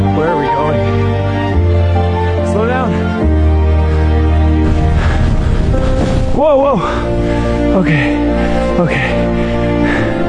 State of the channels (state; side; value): identical; both; correlation 1.00